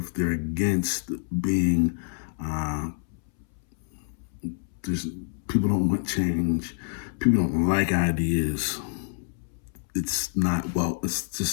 They're against being. People don't want change. People don't like ideas. It's not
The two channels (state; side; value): silent; right; 60 dB below the other